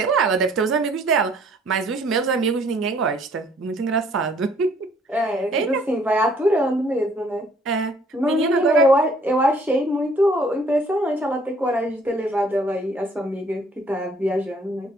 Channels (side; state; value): both; normal; correlation 0.60